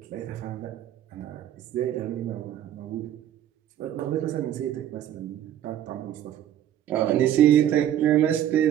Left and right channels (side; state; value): left; quieter; 11.2 dB